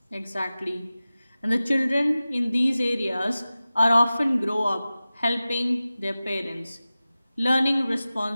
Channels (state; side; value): inverted; both; correlation -0.96